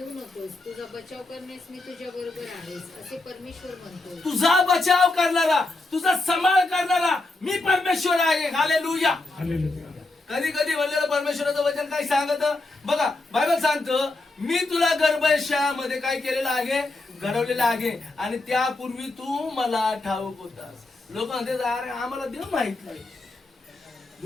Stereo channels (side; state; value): right; quieter; 3.0 dB